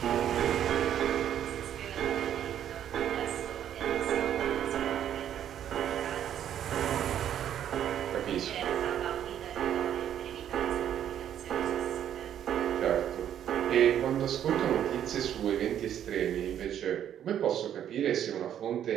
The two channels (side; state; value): left; quieter; 10.2 dB